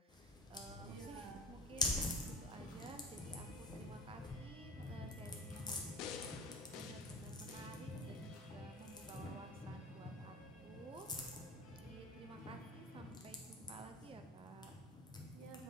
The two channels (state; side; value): normal; both; correlation 0.36